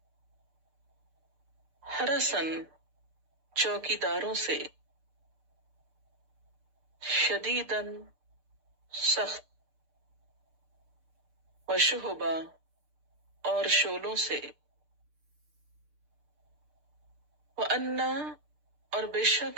حرسن چوکیداروں سے، شدیدن سخت، وشہبا اور شولوں سے، وَأَنَّا اور بے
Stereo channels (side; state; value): left; late; 6.7 ms